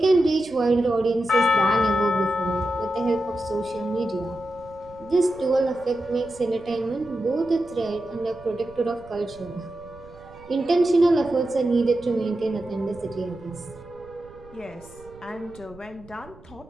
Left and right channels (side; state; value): right; noise; rumble, 22 dB below the sound